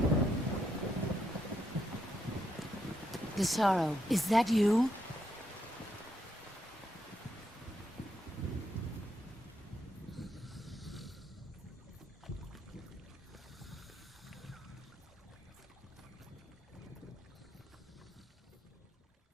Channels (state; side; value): normal; both; correlation 0.78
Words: Desaro, is that you?